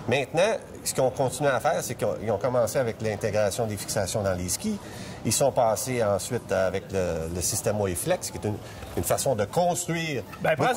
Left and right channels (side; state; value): both; identical; correlation 1.00